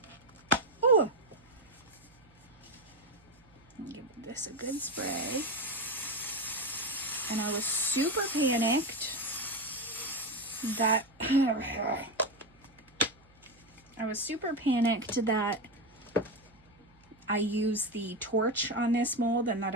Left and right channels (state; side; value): noise; right; hum, 29 dB below the sound